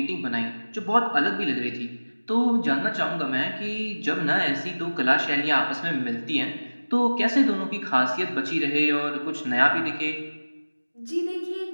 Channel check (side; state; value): both; inverted; correlation -1.00